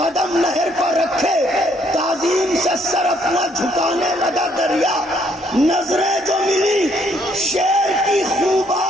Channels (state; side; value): normal; both; correlation 0.68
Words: नहर पर रखे, ताजीम से सर अपना झुकाने लगा दरिया। नजरें जो मिली शेर की